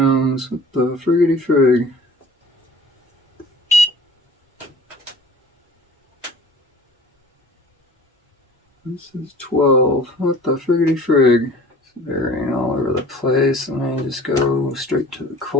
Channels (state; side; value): normal; both; correlation 0.47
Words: What the friggity frig? This is 12. What the friggity frig? It's varying all over the place. Let me just go straight to the